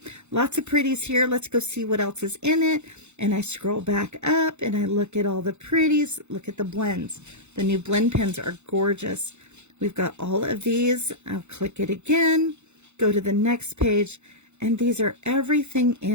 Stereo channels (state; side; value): late; left; 0.82 ms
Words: lots of pretties here. Let's go see what else is in it. And I scroll back up and I look at all the pretties. Look at the blends. The new blend pens are gorgeous. We've got all of these. I'll click it again, go to the next page, and these are everything